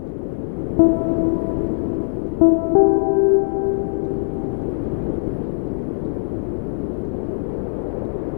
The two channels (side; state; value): right; silent; 59 dB below the other